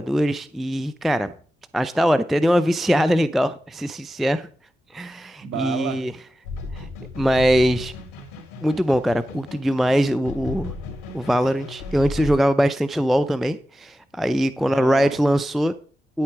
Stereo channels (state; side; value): normal; both; correlation 0.93